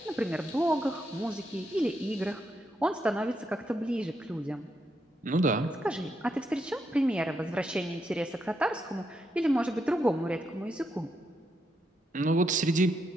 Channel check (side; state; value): both; normal; correlation 0.81